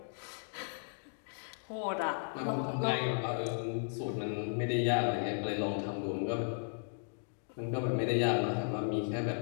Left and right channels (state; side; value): silent; right; digital silence